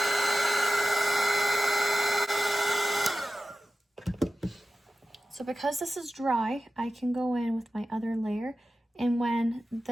So because this is dry, I can go in with my other layer, and when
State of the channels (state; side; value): normal; both; correlation 0.94